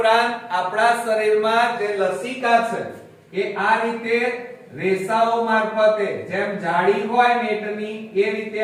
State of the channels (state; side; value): identical; both; correlation 1.00